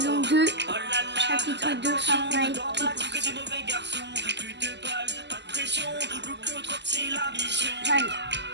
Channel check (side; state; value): left; late; 0.51 ms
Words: l'eau. 2, Oh là là, chapitre 2, Fortnite. normal, que des mauvais garçons. Plus de balles, pas de pression. Le trop c'est la mission. Allez,